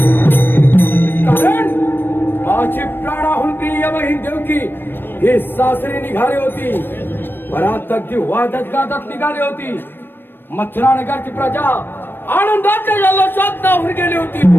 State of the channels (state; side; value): late; right; 0.097 ms